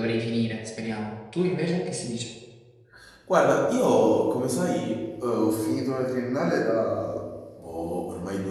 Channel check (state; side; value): identical; both; correlation 1.00